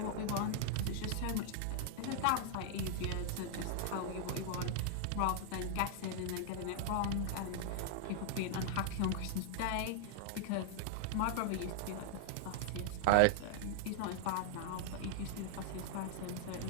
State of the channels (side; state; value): both; different; correlation 0.00